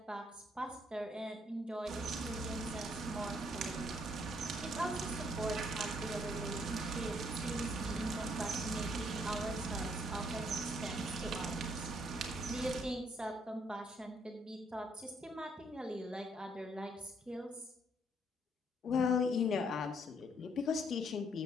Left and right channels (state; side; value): normal; both; correlation 0.69